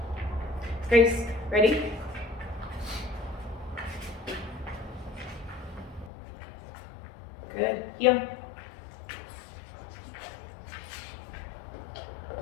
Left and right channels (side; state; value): right; drops out; at 6.1 s